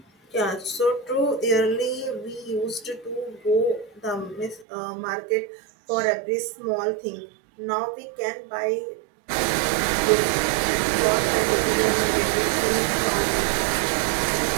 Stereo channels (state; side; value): drops out; left; at 4.7 s